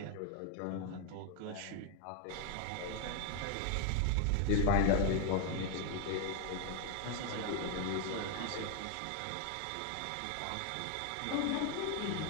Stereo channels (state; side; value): different; both; correlation 0.01